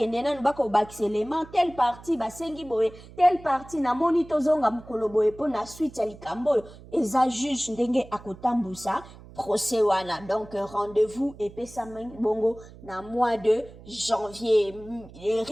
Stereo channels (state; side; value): noise; right; hum, 19 dB below the sound